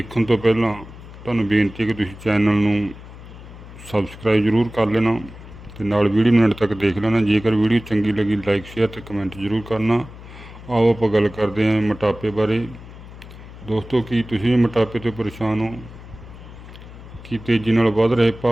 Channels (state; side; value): noise; left; hum, 16 dB below the sound